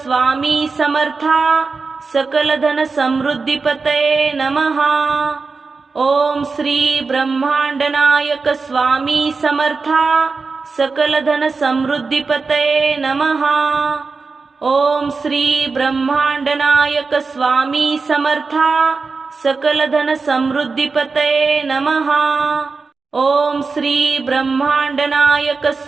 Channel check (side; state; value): left; quieter; 4.4 dB